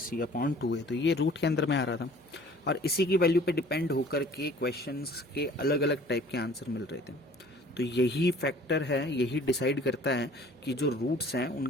upon 2 है, तो ये रूट के अंदर में आ रहा था और इसी की वैल्यू पे डिपेंड होकर के क्वेश्चंस के अलग अलग टाइप के आंसर मिल रहे थे। तो यही फैक्टर है, यही डिसाइड करता है कि जो रूट्स हैं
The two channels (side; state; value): right; noise; hum, 28 dB below the sound